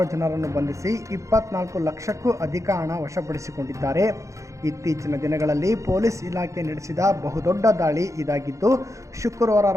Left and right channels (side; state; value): left; late; 0.15 ms